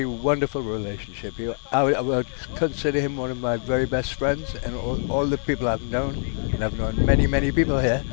wonderful relationship. I would consider him one of my very best friends, and all the people I've known, and I've known many, many people here,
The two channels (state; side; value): silent; right; digital silence